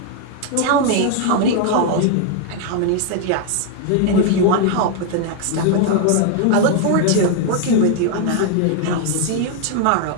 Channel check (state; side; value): different; both; correlation 0.00